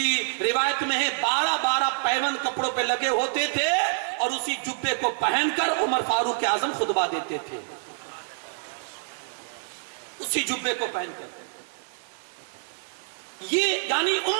روایت میں ہے 12 پیون کپڑوں پہ لگے ہوتے تھے, اور اسی جبے کو پہن کر عمر فاروق اعظم خطبہ دیتے تھے. اسی جبے کو پہن کر. یہ یعنی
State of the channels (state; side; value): silent; left; 60 dB below the other